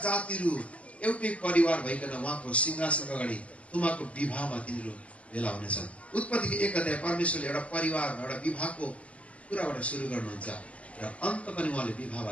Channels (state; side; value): late; right; 0.065 ms